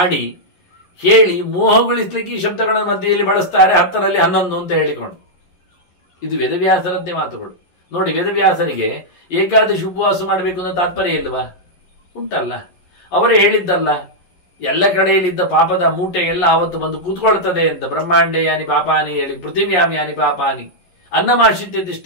ಹೇಳಿ ಮೋಹಗೊಳಿಸ್ಲಿಕ್ಕೆ ಈ ಶಬ್ದಗಳ ಮಧ್ಯೆಯಲ್ಲಿ ಬಳಸ್ತಾರೆ, 10ರಲ್ಲಿ 11 ಅಂತ ಹೇಳಿಕೊಂಡು. ಇದು ವೇದವ್ಯಾಸರದ್ದೇ ಮಾತುಗಳು. ನೋಡಿ, ವೇದವ್ಯಾಸರಿಗೆ ಏಕಾದಶಿ ಉಪವಾಸ ಮಾಡಬೇಕು ಅನ್ನೋ ತಾತ್ಪರ್ಯ ಇಲ್ವಾ? ಉಂಟಲ್ಲ. ಅವರೇ ಹೇಳಿದ್ದಲ್ಲ, ಎಲ್ಲ ಕಡೆಯಲ್ಲಿದ್ದ ಪಾಪದ ಮೂಟೆ ಎಲ್ಲ ಆವತ್ತು ಬಂದು ಕೂತ್ಕೊಳ್ತದೆ ಅಂತ. ಬ್ರಹ್ಮಾಂಡೇ ಯಾನಿ ಪಾಪಾನಿ ಹೇಳಿ, ಪೃಥಿವ್ಯಾಮ್ ಯಾನಿ ಪಾಪಾನಿ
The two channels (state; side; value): late; right; 11 ms